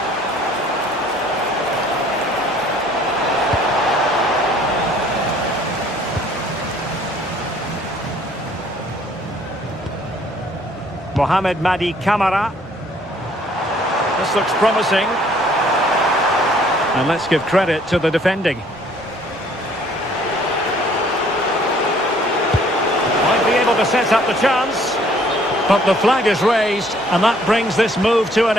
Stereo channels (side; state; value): both; normal; correlation 0.59